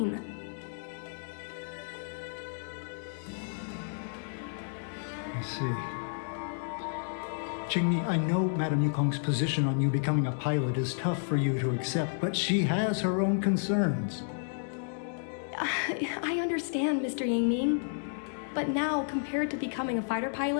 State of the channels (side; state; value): right; silent; digital silence